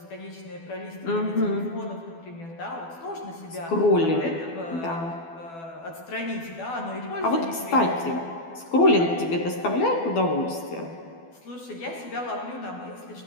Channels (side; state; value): right; late; 12 ms